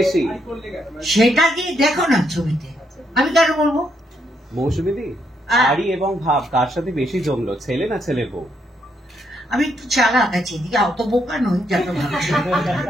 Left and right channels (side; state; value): both; normal; correlation 0.76